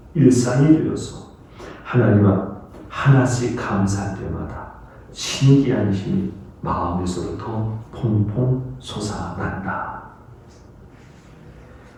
일상이 되어서 하나님 앞 하나씩 감사할 때마다 신기한 힘이 마음에서부터 퐁퐁 솟아난다.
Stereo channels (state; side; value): identical; both; correlation 1.00